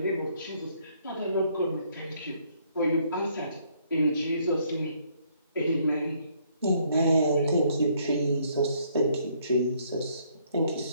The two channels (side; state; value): both; inverted; correlation -0.67